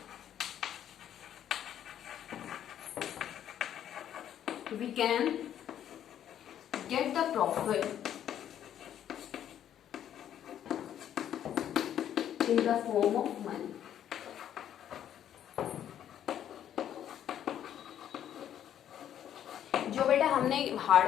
we can get the profit in the form of money. जो बेटा हमने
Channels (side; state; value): right; quieter; 10.4 dB